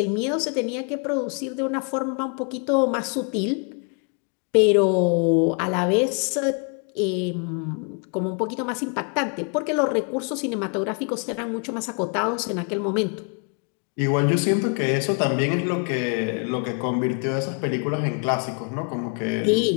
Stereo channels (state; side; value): quieter; right; 39.2 dB